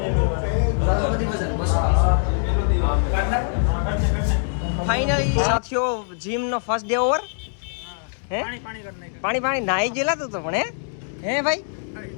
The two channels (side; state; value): right; silent; digital silence